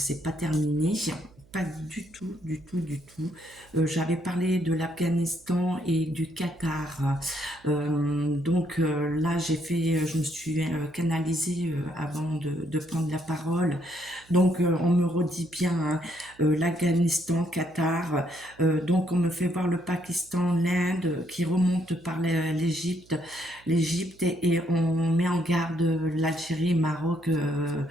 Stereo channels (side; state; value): right; noise; hum, 28 dB below the sound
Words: pas terminé. Pas du tout, du tout, du tout. J'avais parlé de l'Afghanistan et du Qatar. Là, je me suis canalisée avant de prendre la parole. On me redit bien, hein, l'Afghanistan, Qatar. On me fait voir le Pakistan, l'Inde qui remonte par l'Égypte et on met en garde l'Algérie, Maroc.